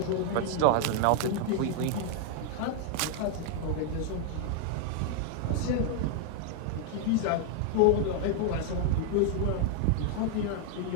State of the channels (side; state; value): both; different; correlation 0.00